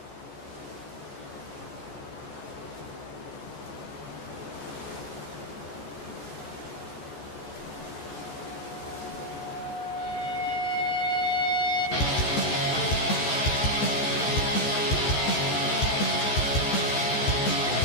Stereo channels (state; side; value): late; right; 14 ms